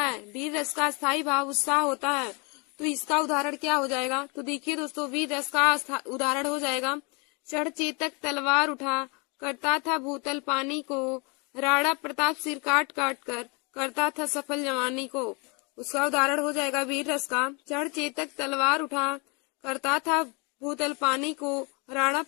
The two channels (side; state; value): right; quieter; 31.7 dB